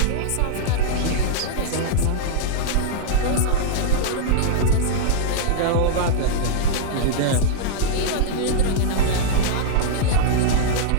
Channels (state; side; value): different; both; correlation -0.02